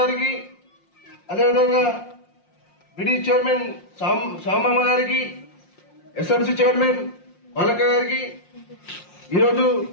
అదేవిధంగా బిడి చైర్మన్ సామమ్మ గారికి, ఎస్ఎంసీ చైర్మన్ బాలక గారికి, ఈరోజు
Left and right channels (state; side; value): late; right; 5.6 ms